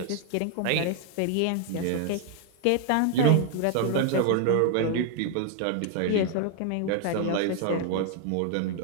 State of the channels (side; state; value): both; different; correlation 0.00